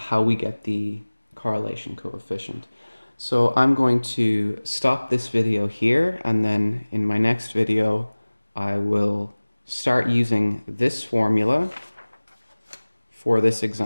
we get the correlation coefficient. So I'm going to stop this video here, and then in my next video I will start using this formula for this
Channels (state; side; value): inverted; both; correlation -1.00